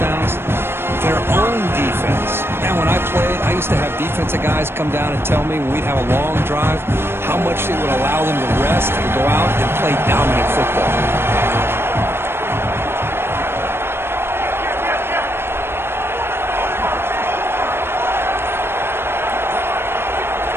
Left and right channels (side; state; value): left; late; 0.11 ms